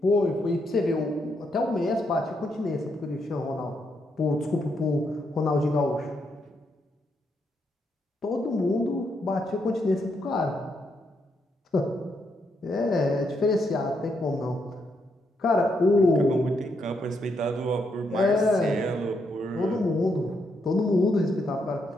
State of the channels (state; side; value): normal; both; correlation 0.78